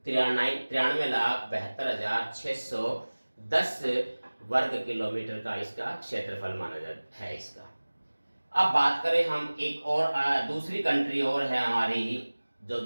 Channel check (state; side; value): inverted; both; correlation -1.00